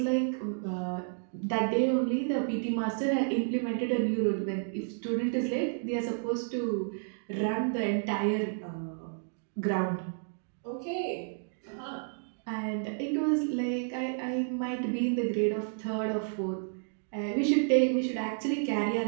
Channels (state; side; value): silent; left; digital silence